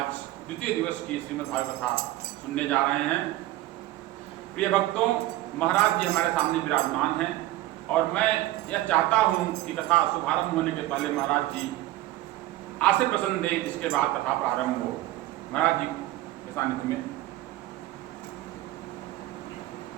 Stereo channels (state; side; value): quieter; left; 16.0 dB